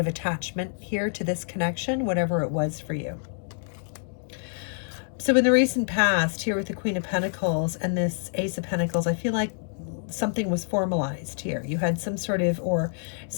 attachment here to this connection, whatever it was for you. So in the recent past, here with the Queen of Pentacles and this Ace of Pentacles, I feel like something was formalized here. You had some sort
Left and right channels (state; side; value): silent; right; digital silence